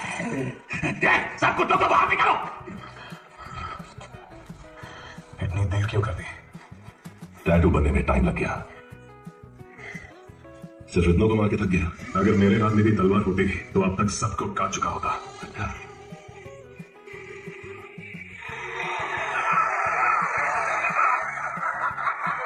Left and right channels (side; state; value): both; identical; correlation 1.00